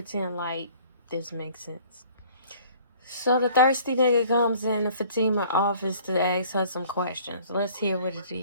like this makes sense. So the thirsty nigga comes in the Fatima office to ask her some questions. Let's hear what it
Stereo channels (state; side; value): inverted; both; correlation -0.52